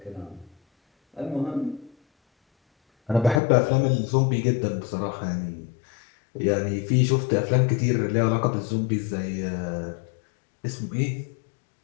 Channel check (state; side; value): drops out; right; at 3.4 s